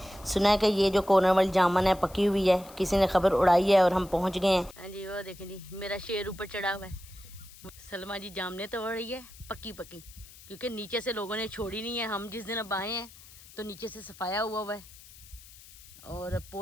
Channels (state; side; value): noise; left; hiss, 20 dB below the sound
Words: सुना है कि ये जो कॉर्नर वाली जामन है पकी हुई है, किसी ने खबर उड़ाई है और हम पहुंच गए हैं। हाँ जी, वो देखें जी, मेरा शेर ऊपर चढ़ा हुआ है। सलमा जी जामने तोड़ रही है पक्की पक्की, क्योंकि नीचे से लोगों ने छोड़ी नहीं है। हम जिस दिन अब आए हैं तो नीचे से सफाया हुआ है और